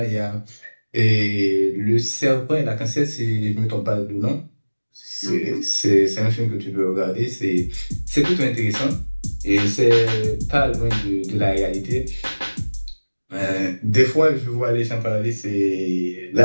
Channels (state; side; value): inverted; both; correlation -1.00